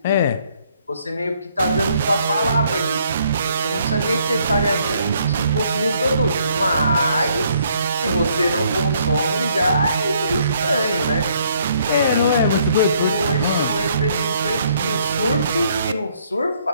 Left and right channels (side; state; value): both; inverted; correlation -0.67